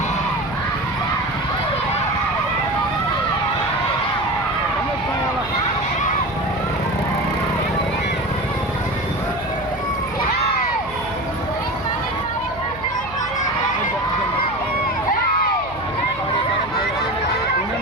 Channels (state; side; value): noise; right; hum, 17 dB below the sound